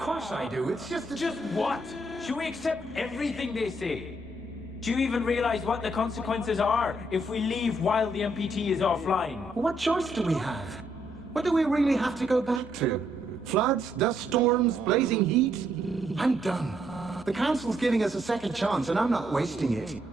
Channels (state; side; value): normal; both; correlation 0.73